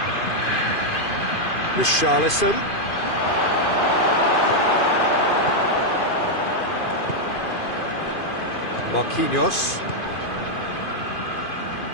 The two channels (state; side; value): late; right; 2.5 ms